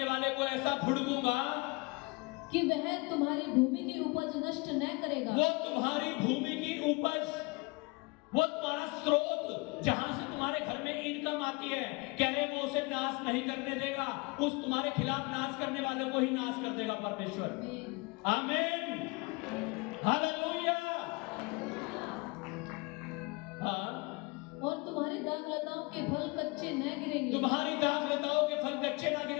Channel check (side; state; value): right; quieter; 26.9 dB